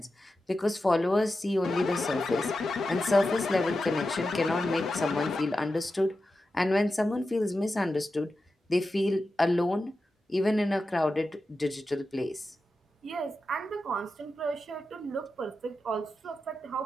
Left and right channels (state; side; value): normal; both; correlation 0.91